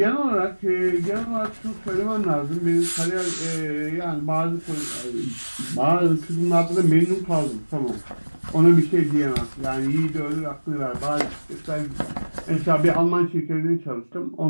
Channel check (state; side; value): inverted; both; correlation -1.00